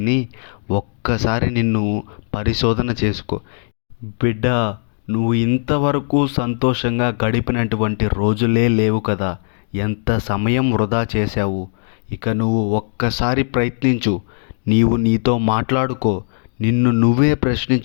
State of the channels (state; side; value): silent; right; digital silence